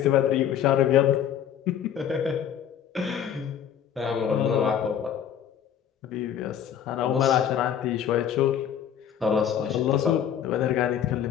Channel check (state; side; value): quieter; right; 9.3 dB